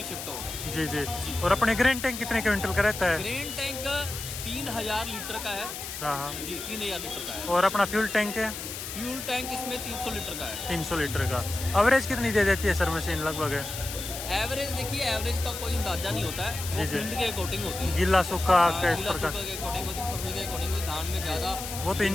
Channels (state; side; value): noise; left; hiss, 8 dB below the sound